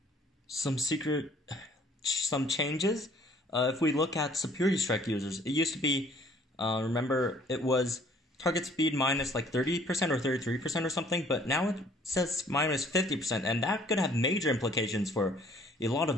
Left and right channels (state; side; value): normal; both; correlation 0.58